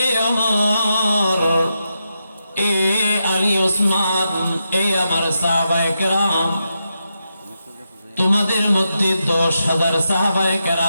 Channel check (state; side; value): inverted; both; correlation -0.86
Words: ওমর, এ আলী, ওসমান, এ আমার সাহাবায়ে কেরাম, তোমাদের মধ্যে 10,000 সাহাবায়ে